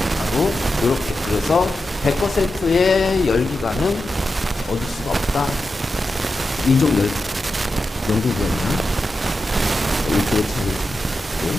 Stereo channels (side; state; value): both; normal; correlation 0.90